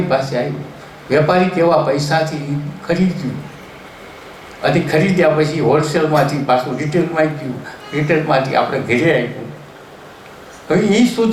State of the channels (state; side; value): identical; both; correlation 1.00